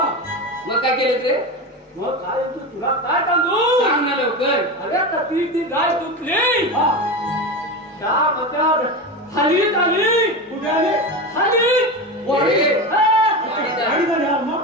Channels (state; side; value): normal; both; correlation 0.21